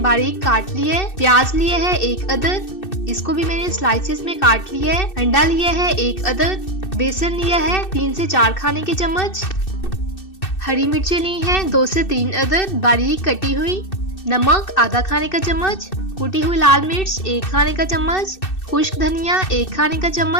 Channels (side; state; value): right; late; 2.6 ms